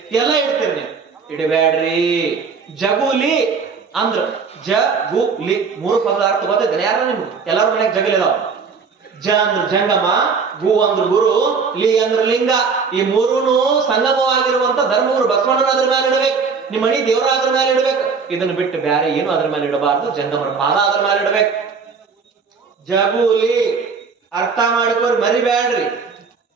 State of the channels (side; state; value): left; quieter; 5.3 dB